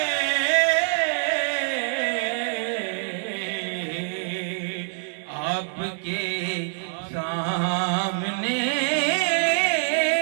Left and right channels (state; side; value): silent; left; digital silence